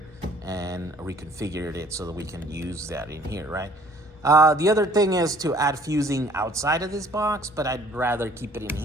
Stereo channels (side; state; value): both; normal; correlation 0.56